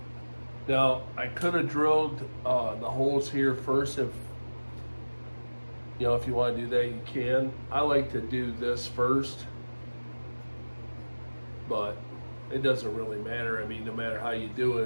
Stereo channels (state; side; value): inverted; both; correlation -1.00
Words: Now, I could have drilled the holes here first. If you want to do that, you can. I like to do this first, but it doesn't really matter. I mean, no matter how you do